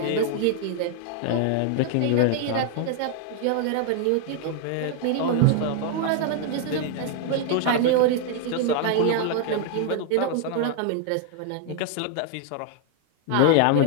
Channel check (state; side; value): different; both; correlation 0.00